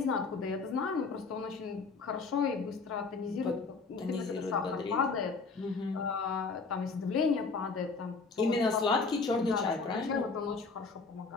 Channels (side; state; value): right; quieter; 4.4 dB